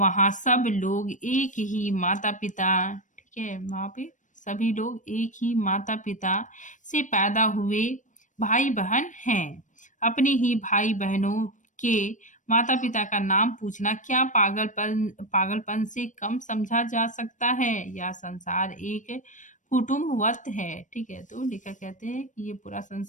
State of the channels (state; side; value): late; right; 0.37 ms